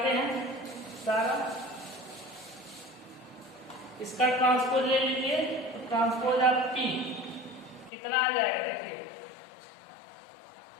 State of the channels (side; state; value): right; drops out; at 7.9 s